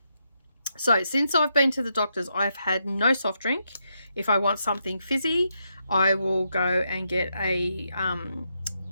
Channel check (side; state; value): both; inverted; correlation -0.81